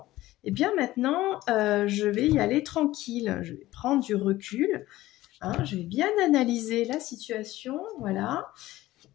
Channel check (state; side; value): quieter; right; 16.5 dB